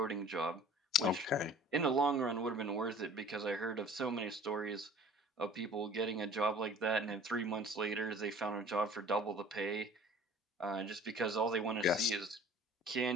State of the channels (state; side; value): normal; both; correlation 0.47